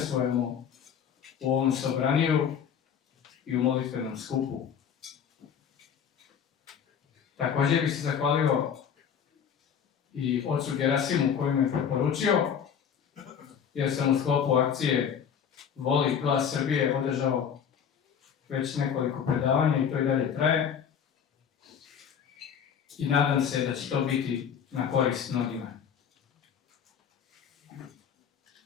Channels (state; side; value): quieter; right; 7.8 dB